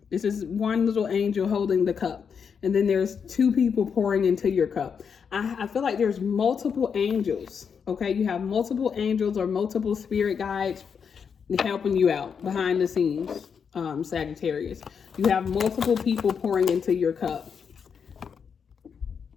This is one little angel holding the cup. And then there's 2 people pouring into your cup. I feel like there's multiple angels, okay? You have multiple angels or multiple spirit guides helping you out behind the scenes, Sagittarius. You have multiple people pouring into your cup.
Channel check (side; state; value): right; quieter; 6.6 dB